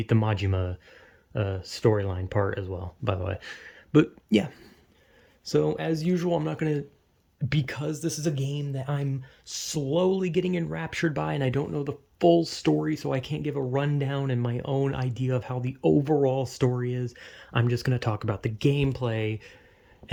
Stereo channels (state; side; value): identical; both; correlation 1.00